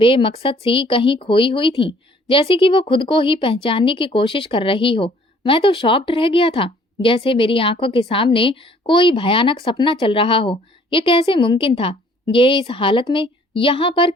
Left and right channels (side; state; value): both; normal; correlation 0.58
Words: सी कहीं खोई हुई थीं, जैसे कि वो खुद को ही पहचानने की कोशिश कर रही हो। मैं तो शॉक्ड रह गया था, जैसे मेरी आंखों के सामने कोई भयानक सपना चल रहा हो। ये कैसे मुमकिन था? ये इस हालत में यहाँ पर